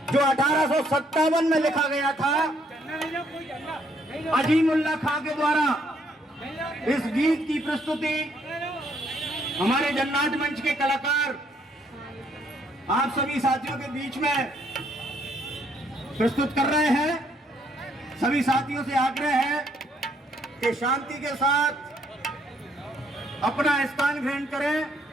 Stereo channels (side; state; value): both; normal; correlation 0.69